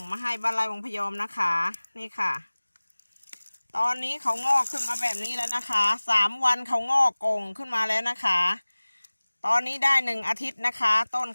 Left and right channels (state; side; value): inverted; both; correlation -1.00